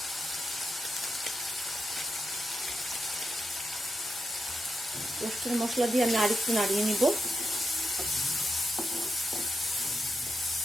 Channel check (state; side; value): normal; both; correlation 0.86